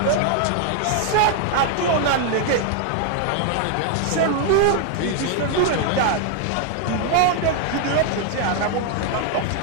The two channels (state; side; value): different; both; correlation 0.00